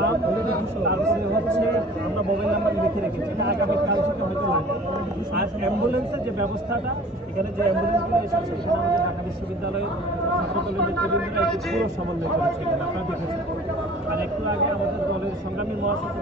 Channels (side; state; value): both; normal; correlation 0.47